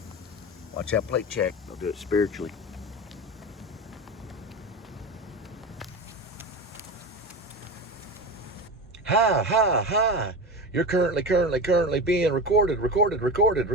Watch that plate check. They'll do it spiritually. Hi, hi, hi. You're currently being recorded.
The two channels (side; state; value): both; normal; correlation 0.25